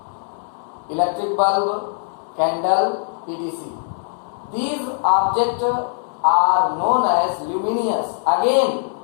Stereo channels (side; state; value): right; silent; digital silence